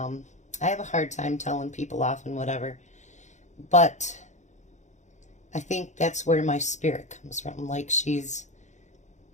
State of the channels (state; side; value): late; right; 0.34 ms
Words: have a hard time telling people off and whatever. But I think that's where my spirit comes from. Like, she's